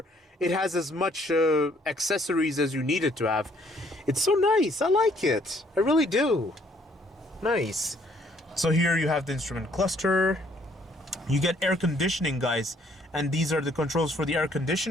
it has as much accessories as you need it to have. It's so nice. I like it. I really do. Nice. So here you have the instrument cluster. You get air conditioning, guys, and these are the controls for the air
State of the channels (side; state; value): both; normal; correlation 0.64